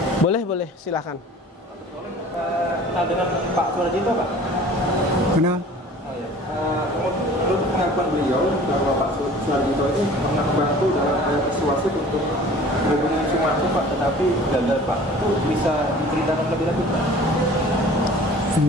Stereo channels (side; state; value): both; normal; correlation 0.46